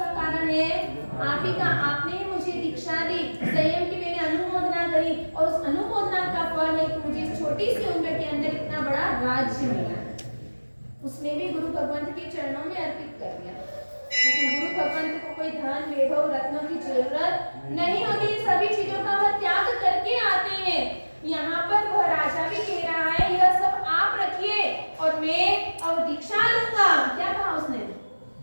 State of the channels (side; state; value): both; inverted; correlation -1.00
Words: कारण है? आप ही का। आपने ही मुझे दीक्षा दी, संयम की मैंने अनुमोदना करी, और उस अनुमोदना का फल है कि मुझे इस छोटी सी उम्र के अंदर इतना बड़ा राज्य मिला। उसने भी गुरु भगवंत के चरणों में अर्पित कर दिया। लेकिन गुरु भगवंत को कोई धन वैभव रत्नों की जरूरत नहीं होती, सभी चीजों का वह त्याग करके आते हैं। यहाँ पर वह राजा भी कह रहा है यह सब आप रखिए और मैं अब दीक्षा लूंगा। क्या कहा उसने?